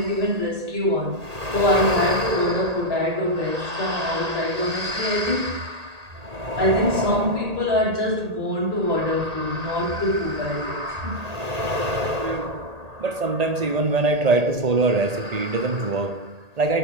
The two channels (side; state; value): left; late; 1.8 ms